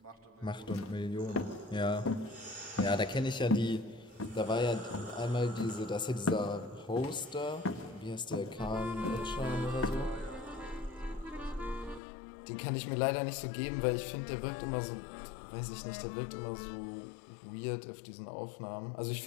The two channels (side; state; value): right; drops out; at 12.0 s